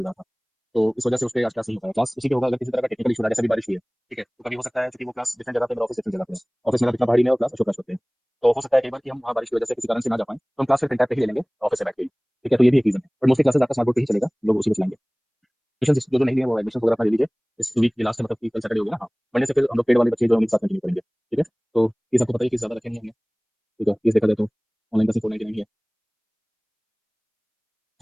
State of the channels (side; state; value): both; identical; correlation 1.00